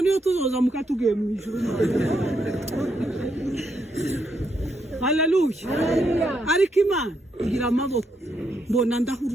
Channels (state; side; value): normal; both; correlation 0.78